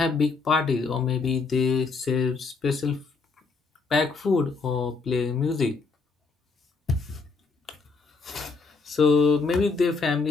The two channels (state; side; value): quieter; right; 4.3 dB